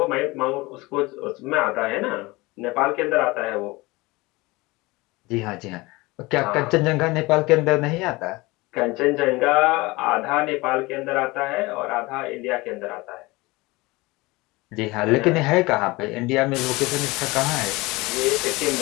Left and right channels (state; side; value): quieter; right; 22.4 dB